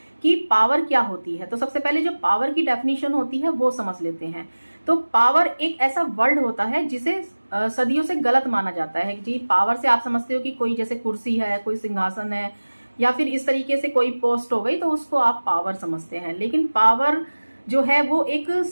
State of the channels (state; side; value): inverted; both; correlation -1.00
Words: कि पावर क्या होती है। तो सबसे पहले जो पावर की डेफिनेशन होती है वो समझ लेते हैं। तो पावर एक ऐसा वर्ड होता है जिसे सदियों से गलत माना जाता है जी। पावर से आप समझते हो कि कोई जैसे कुर्सी है, कोई सिंहासन है, या फिर इस तरीके से कोई पोस्ट हो गई, तो उसको आप पावर समझते हैं। लेकिन पावर जो है वो एक